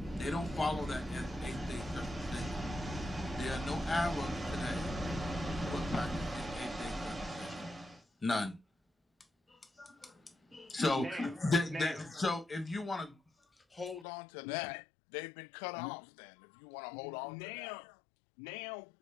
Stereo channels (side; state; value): right; drops out; at 14.1 s